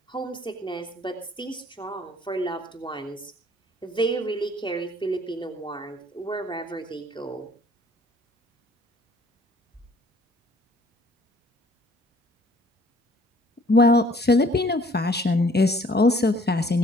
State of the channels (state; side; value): normal; both; correlation 0.58